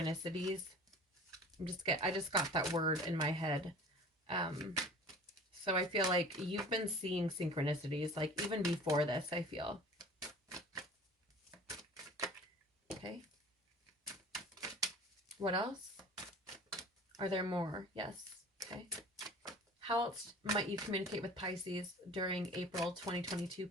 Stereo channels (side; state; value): both; normal; correlation 0.43